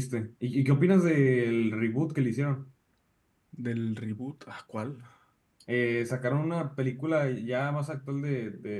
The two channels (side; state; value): both; identical; correlation 1.00